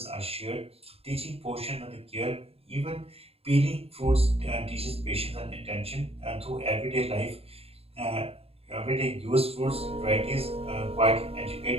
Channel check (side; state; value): left; late; 0.29 ms